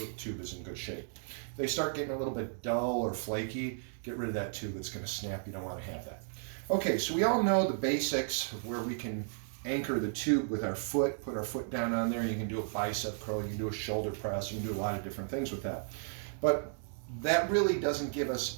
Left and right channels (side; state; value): left; silent; digital silence